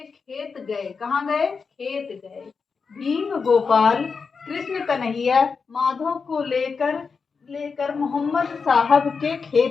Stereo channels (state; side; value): quieter; right; 5.2 dB